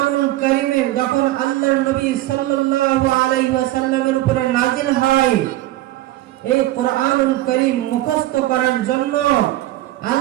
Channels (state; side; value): quieter; left; 16.0 dB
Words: কারীমে যখন আল্লাহর নবী সাল্লাল্লাহু আলাইহি ওয়াসাল্লামের উপরে নাজিল হয়, এই কোরআনুল কারীম মুখস্থ করার জন্য